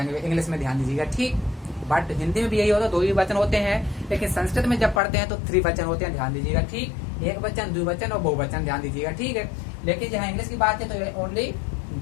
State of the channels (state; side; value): drops out; right; at 5.0 s